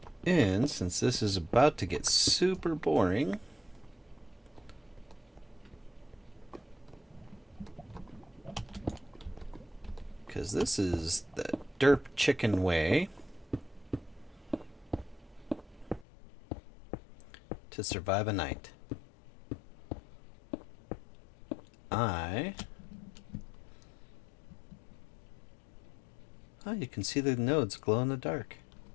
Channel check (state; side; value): drops out; right; at 16.1 s